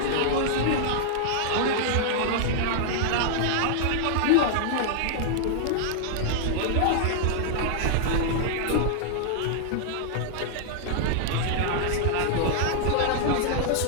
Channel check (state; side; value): different; both; correlation -0.01